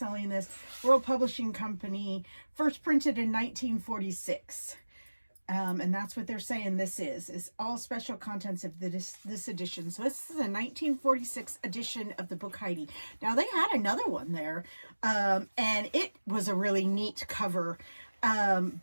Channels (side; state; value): both; inverted; correlation -1.00